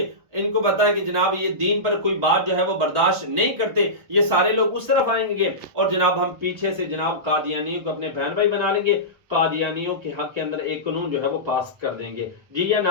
इनको पता है कि जनाब ये दीन पर कोई बात जो है वो बर्दाश्त नहीं करते, ये सारे लोग उस तरफ आएंगे और जनाब हम पीछे से जनाब कादियानियों को अपने बहन भाई बना लेंगे, कादियानियों के हक के अंदर एक कानून जो है वो पास कर देंगे। जी या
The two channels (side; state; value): left; late; 1.2 ms